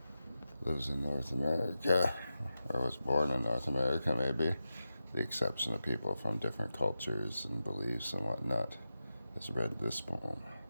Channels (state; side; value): inverted; both; correlation -0.91